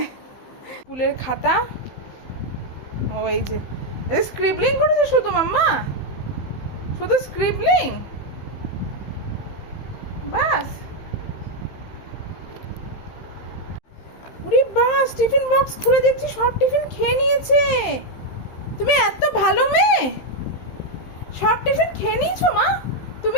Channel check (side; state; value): right; late; 15 ms